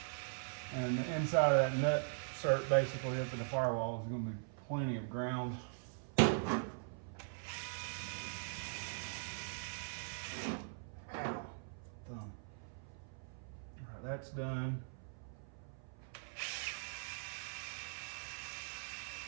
And the inside of that nut cert basically up in the firewall is gonna be plenty of ground. Ow. Thumb. All right, that's done.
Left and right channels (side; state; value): left; silent; 50 dB below the other